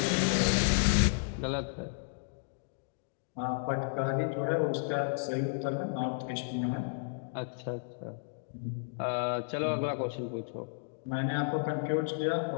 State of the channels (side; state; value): right; silent; digital silence